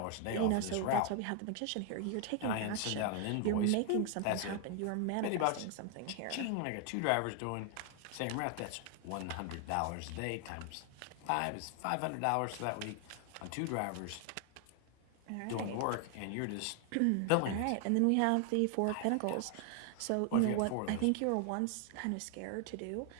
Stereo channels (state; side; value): different; both; correlation 0.00